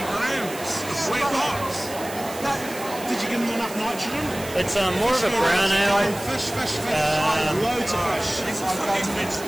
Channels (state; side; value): noise; right; hiss, 13 dB below the sound